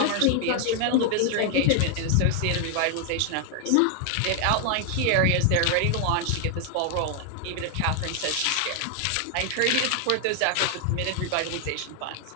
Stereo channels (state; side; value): different; both; correlation 0.00